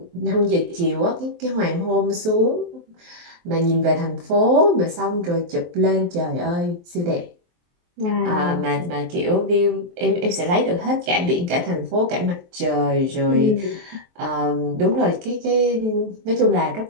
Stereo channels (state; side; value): late; left; 23 ms